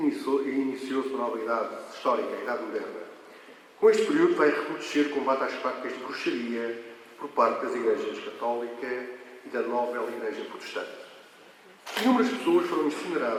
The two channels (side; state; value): both; identical; correlation 1.00